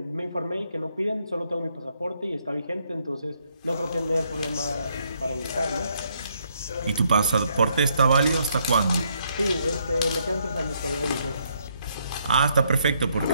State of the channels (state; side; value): inverted; both; correlation -0.73